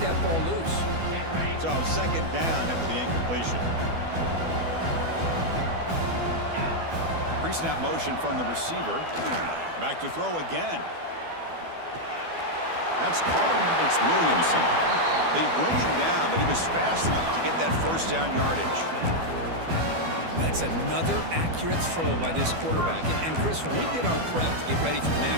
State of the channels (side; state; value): left; late; 12 ms